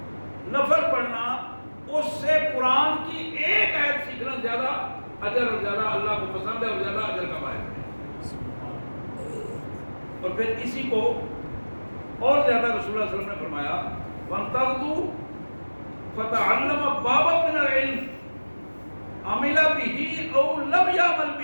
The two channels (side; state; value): both; inverted; correlation -1.00